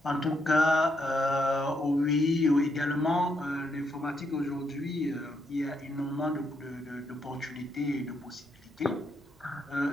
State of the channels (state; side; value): normal; both; correlation 0.78